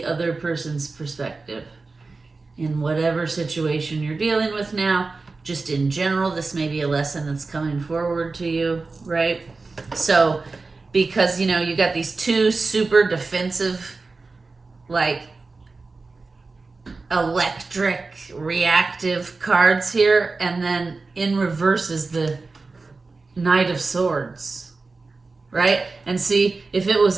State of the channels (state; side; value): quieter; left; 3.9 dB